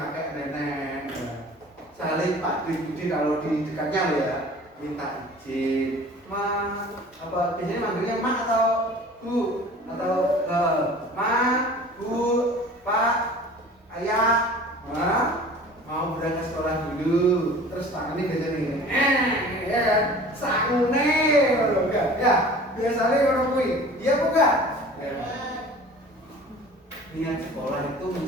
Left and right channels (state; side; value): normal; both; correlation 0.44